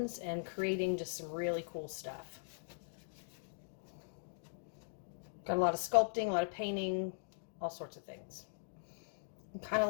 and creating just some really cool stuff. Got a lot of sculpting, a lot of painting, all sorts of things. I'm kind of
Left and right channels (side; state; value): right; silent; digital silence